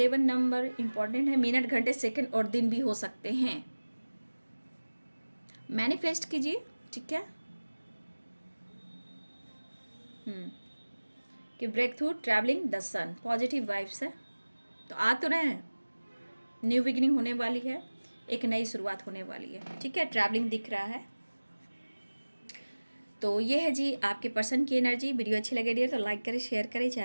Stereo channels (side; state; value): both; inverted; correlation -1.00